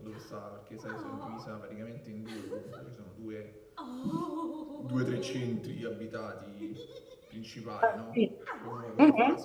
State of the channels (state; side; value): identical; both; correlation 1.00